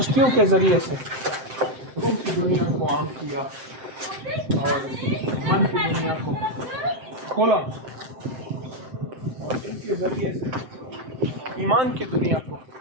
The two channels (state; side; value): late; left; 7.7 ms